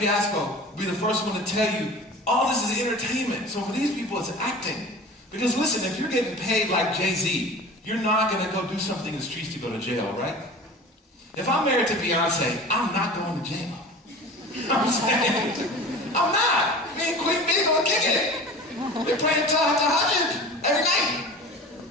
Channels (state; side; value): normal; both; correlation 0.37